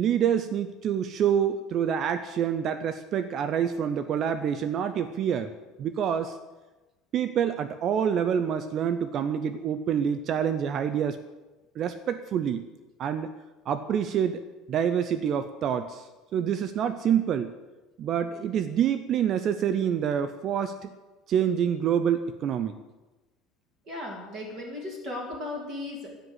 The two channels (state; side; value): quieter; left; 8.0 dB